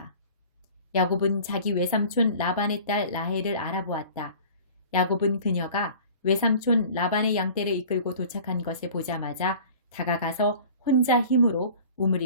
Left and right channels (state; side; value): inverted; both; correlation -0.44